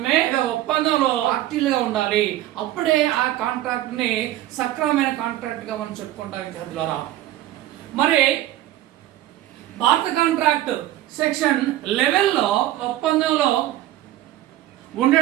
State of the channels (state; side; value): quieter; left; 14.3 dB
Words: ఒప్పందంలో పార్టీలుగా ఉండాలి. అప్పుడే ఆ కాంట్రాక్ట్ ని సక్రమమైన కాంట్రాక్ట్ గా మనం చెప్పుకుంటాం విద్యార్థులారా. మరి భారత కాంట్రాక్ట్ సెక్షన్ 11లో ఒప్పందంలో